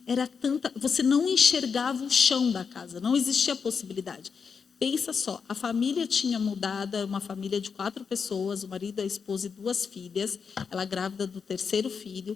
você não enxergava o chão da casa, não existia possibilidade. Pensa só, a família tinha mudado, uma família de 4 pessoas, o marido, a esposa e 2 filhas, ela grávida do 3º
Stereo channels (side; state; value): right; quieter; 5.9 dB